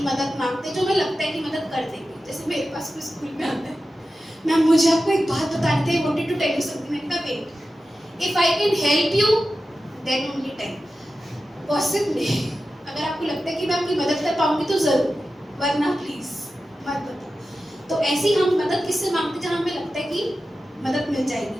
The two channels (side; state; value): both; normal; correlation 0.93